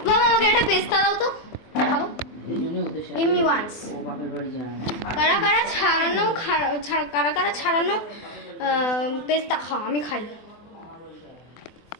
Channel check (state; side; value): late; right; 24 ms